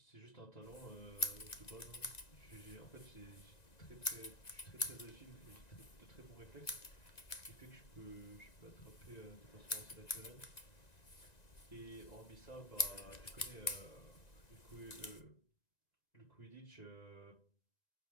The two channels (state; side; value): late; right; 1.9 ms